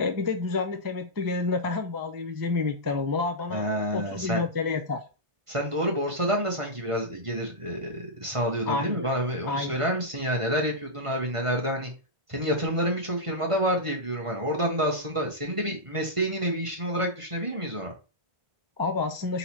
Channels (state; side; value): late; left; 1.5 ms